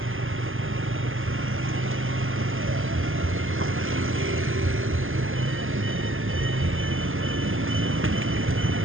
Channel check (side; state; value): left; late; 0.59 ms